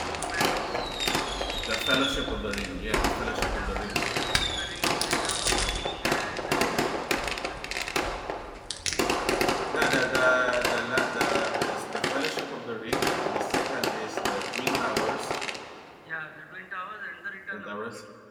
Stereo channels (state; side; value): identical; both; correlation 1.00